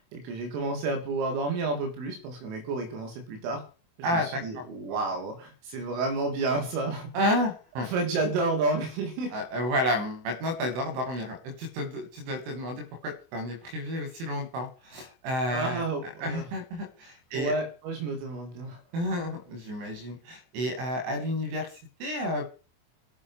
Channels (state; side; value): late; left; 24 ms